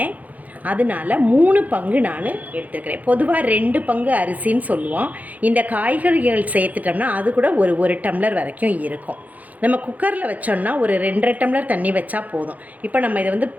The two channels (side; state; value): left; late; 0.078 ms